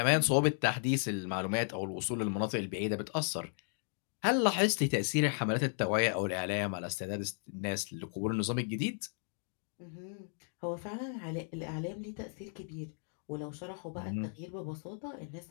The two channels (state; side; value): silent; right; 54 dB below the other